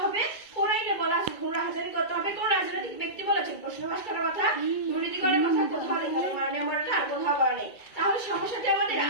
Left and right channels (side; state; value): right; late; 2.3 ms